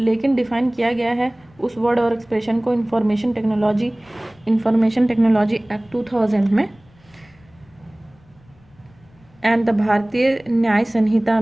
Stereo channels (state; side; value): noise; left; rumble, 29 dB below the sound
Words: डिफाइन किया गया है उस वर्ड और एक्सप्रेशन को इंफॉर्मेशन टेक्नोलॉजी एक्ट 2000 में एंड द भारतीय न्याय संहिता